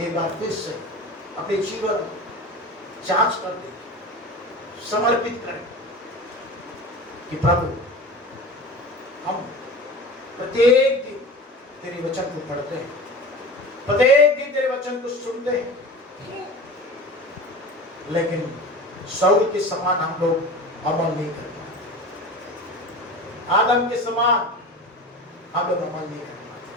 बार फिर से अपने जीवन जांच कर दें, समर्पित करें कि प्रभु हम प्रत्येक दिन तेरे वचन को पढ़ते हैं, प्रत्येक दिन तेरे वचन को सुनते हैं, लेकिन शाऊल के समान हम लोग अमल नहीं कर पाते। आदम के समान हम लोग अमल नहीं कर पाते।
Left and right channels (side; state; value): both; normal; correlation 0.33